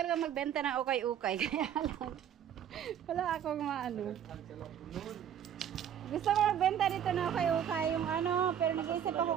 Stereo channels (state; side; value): quieter; left; 9.4 dB